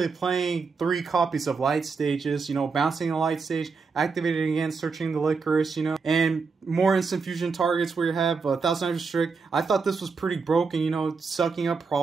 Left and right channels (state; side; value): quieter; left; 4.9 dB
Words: playing 3 copies of light stages, you know, bouncing the light stage, activating again, searching the licorice, you know, and more instant fusion targets where you have 1000 restrict. I thought this was pretty broken, you know, sucking up